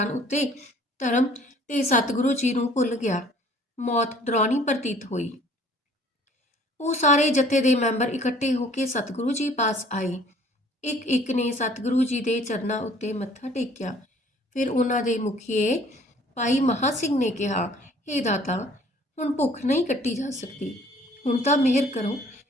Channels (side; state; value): both; normal; correlation 0.55